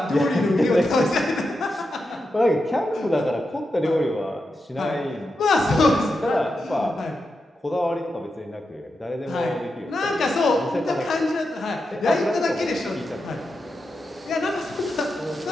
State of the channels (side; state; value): both; normal; correlation 0.88